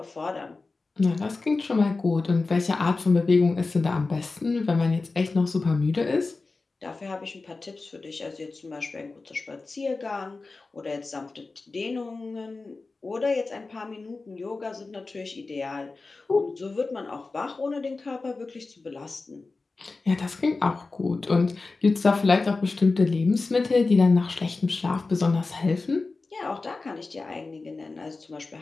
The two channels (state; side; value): quieter; right; 3.7 dB